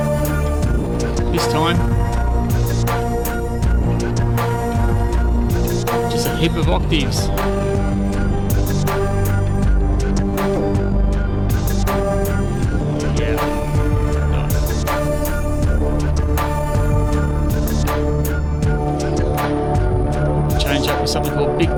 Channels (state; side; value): identical; both; correlation 1.00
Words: This time, just a heap of octaves. Something called Big